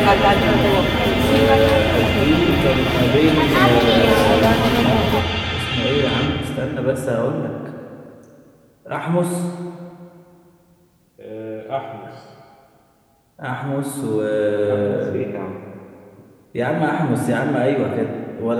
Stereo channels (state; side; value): identical; both; correlation 1.00